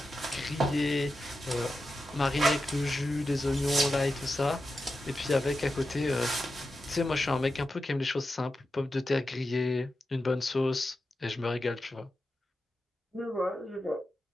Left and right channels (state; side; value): normal; both; correlation 0.90